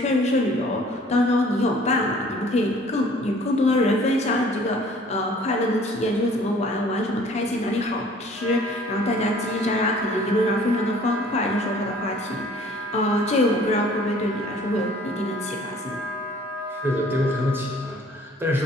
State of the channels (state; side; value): normal; both; correlation 0.53